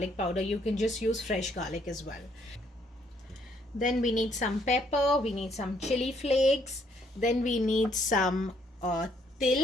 powder, you can just use fresh garlic as well. Then we need some pepper, we need some chili flakes, then we need some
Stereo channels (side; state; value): both; normal; correlation 0.68